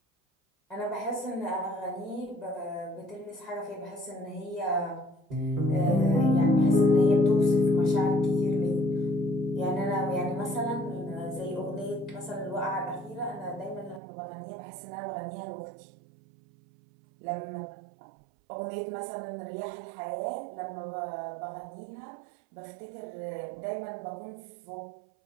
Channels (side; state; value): left; drops out; at 14.0 s